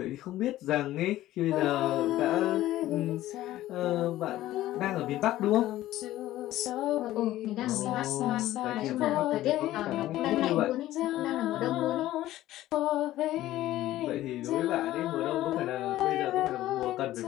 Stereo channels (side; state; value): right; quieter; 14.8 dB